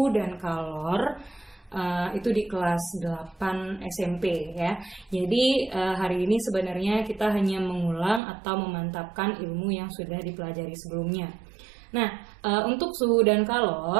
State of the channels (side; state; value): left; drops out; at 8.2 s